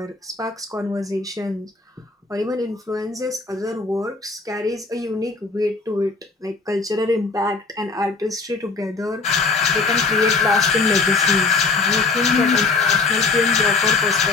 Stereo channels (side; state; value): right; quieter; 4.2 dB